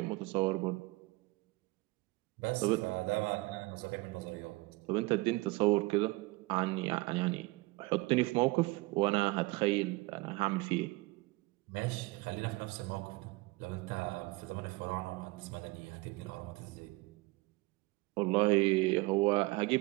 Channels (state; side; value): quieter; left; 23.0 dB